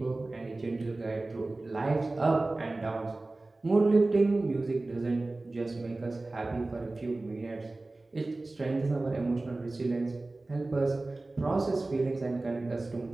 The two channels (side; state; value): left; quieter; 3.1 dB